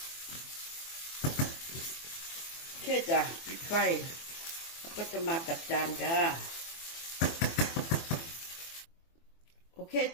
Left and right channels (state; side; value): late; right; 24 ms